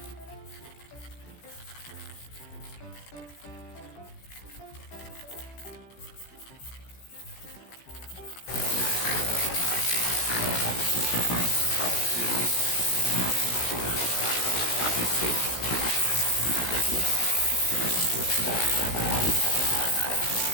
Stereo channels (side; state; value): right; late; 16 ms